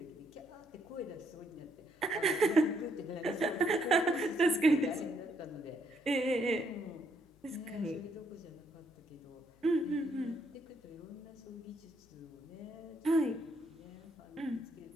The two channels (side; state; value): left; noise; hum, 29 dB below the sound